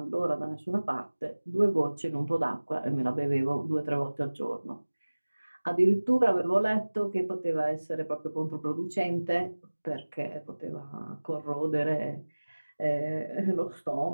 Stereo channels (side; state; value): both; inverted; correlation -1.00